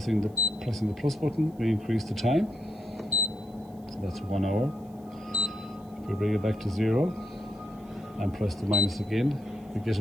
the plus button, we increase the time, so that's 1 hour. If we bring it back to 0 and press the minus again, we get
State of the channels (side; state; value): right; noise; hiss, 30 dB below the sound